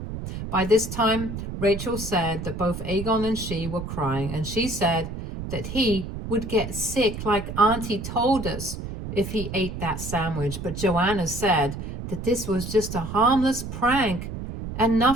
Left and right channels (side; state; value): right; noise; rumble, 7 dB below the sound